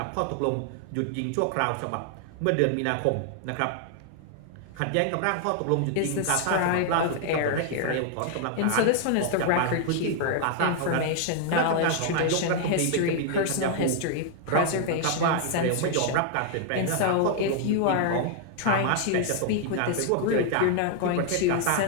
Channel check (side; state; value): both; different; correlation 0.00